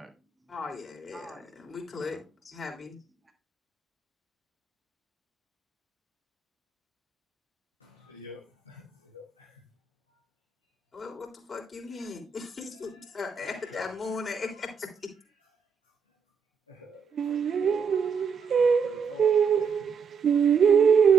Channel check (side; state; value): left; quieter; 6.0 dB